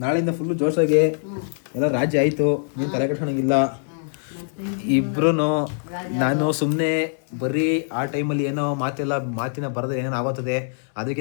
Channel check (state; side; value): silent; right; 63 dB below the other